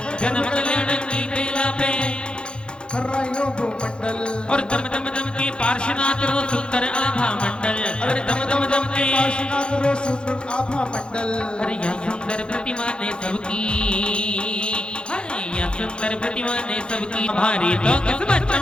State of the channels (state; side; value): late; right; 0.052 ms